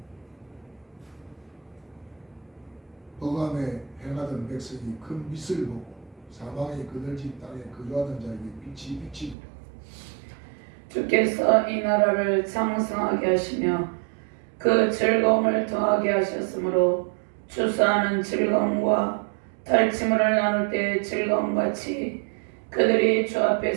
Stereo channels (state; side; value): drops out; left; at 9.3 s